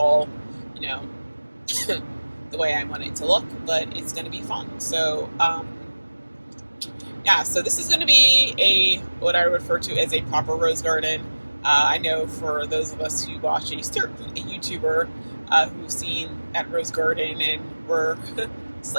the way I want it to look, but it's going to be fun. So so this is going to be what I refer to as a proper rose garden. I know for those of us who watch a YouTuber who've seen that rose garden and were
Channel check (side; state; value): both; inverted; correlation -1.00